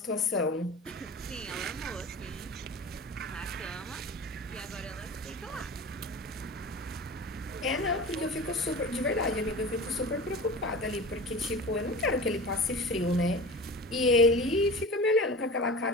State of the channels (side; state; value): both; normal; correlation 0.33